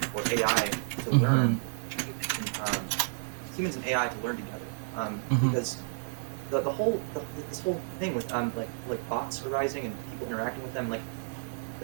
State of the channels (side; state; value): left; silent; digital silence